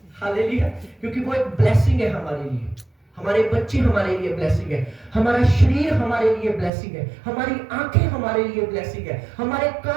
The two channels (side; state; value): left; drops out; at 6.7 s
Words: हालेलुया, क्योंकि वो एक ब्लेसिंग है हमारे लिए। हमारे बच्चे हमारे लिए ब्लेसिंग है, हमारा शरीर हमारे लिए ब्लेसिंग है, हमारी आंखें हमारे लिए ब्लेसिंग है, हमारे